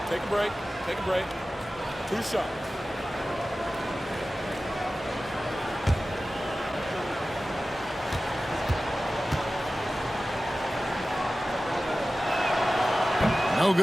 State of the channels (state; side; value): normal; both; correlation 0.95